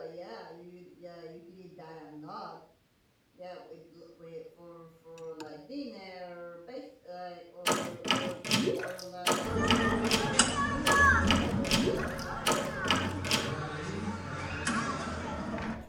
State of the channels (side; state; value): both; identical; correlation 1.00